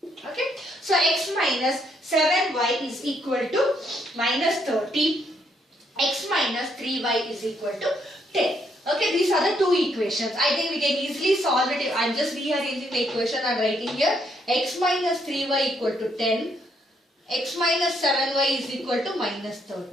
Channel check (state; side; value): normal; both; correlation 0.73